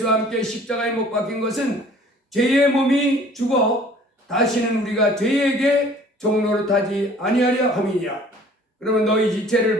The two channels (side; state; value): both; normal; correlation 0.52